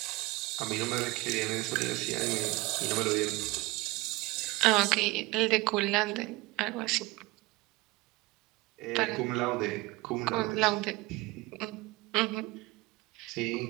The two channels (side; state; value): left; quieter; 22.1 dB